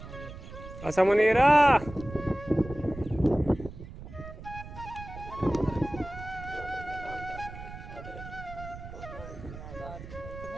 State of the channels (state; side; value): noise; right; rumble, 13 dB below the sound